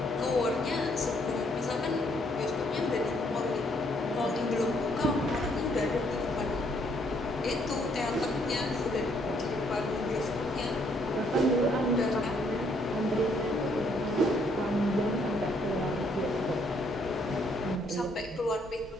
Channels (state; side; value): normal; both; correlation 0.68